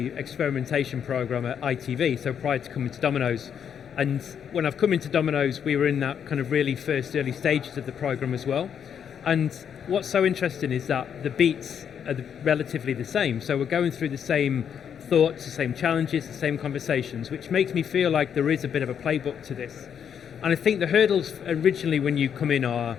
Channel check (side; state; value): right; quieter; 8.1 dB